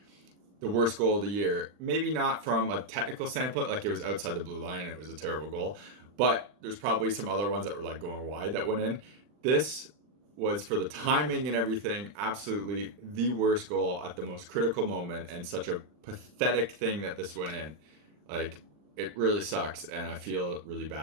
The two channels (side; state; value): left; late; 39 ms